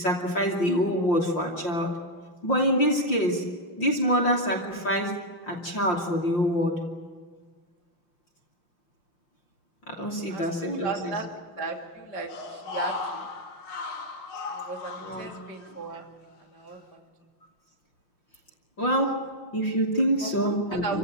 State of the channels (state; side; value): late; right; 5.7 ms